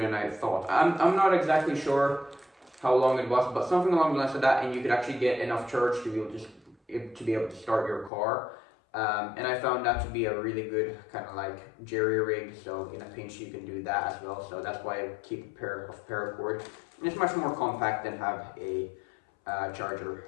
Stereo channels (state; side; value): drops out; right; at 8.1 s